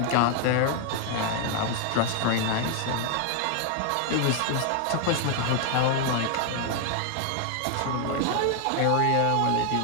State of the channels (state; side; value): different; both; correlation 0.00